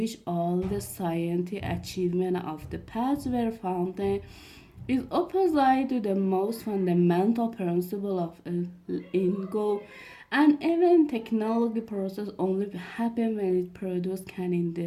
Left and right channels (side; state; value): both; identical; correlation 1.00